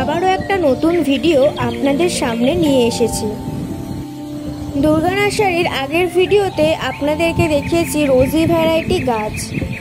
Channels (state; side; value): identical; both; correlation 1.00